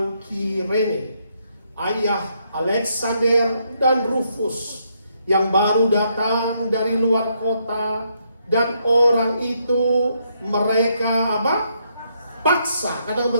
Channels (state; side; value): inverted; both; correlation -0.75